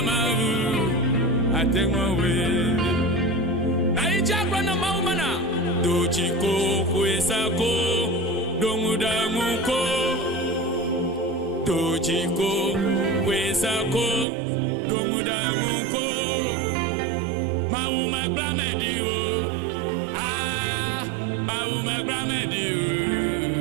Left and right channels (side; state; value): left; drops out; at 14.2 s